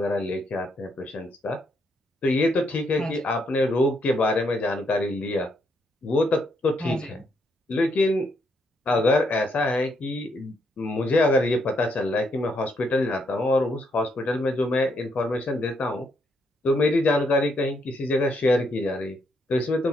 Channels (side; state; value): both; normal; correlation 0.75